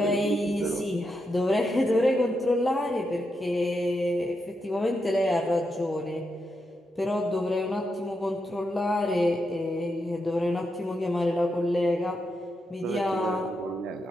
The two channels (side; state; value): both; normal; correlation 0.84